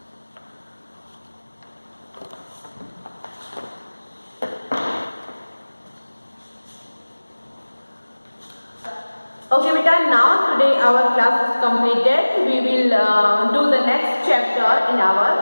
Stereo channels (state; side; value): inverted; both; correlation -1.00